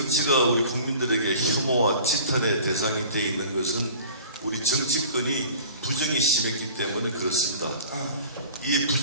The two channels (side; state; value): both; inverted; correlation -0.44